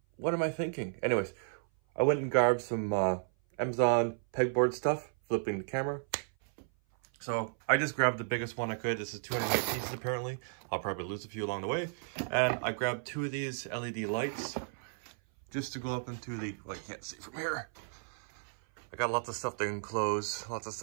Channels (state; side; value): silent; left; 55 dB below the other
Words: what am I thinking? Anyways, I went and grabbed some Amazon pegboard stuff, flipping the camera. So I just grabbed the biggest one I could. This is 208 pieces apparently. I'll probably lose a few along the way. And I grabbed 2 of these LED lights, just to go up into the, well, you can't see from here. I got lots of stuff to enclose, lots